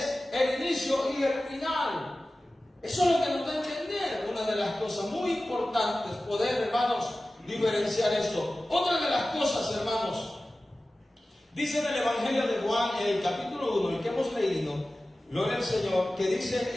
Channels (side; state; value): both; normal; correlation 0.96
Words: el inicio y el final. Eso es lo que nos da a entender. Una de las cosas muy importantes, poder, hermanos, diferenciar esto. Otra de las cosas, hermanos, dice en el Evangelio de Juan, en el capítulo 1, el que hemos leído, gloria al Señor, que dice